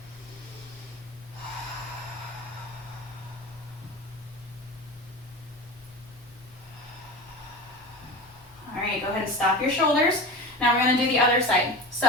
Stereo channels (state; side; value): normal; both; correlation 0.30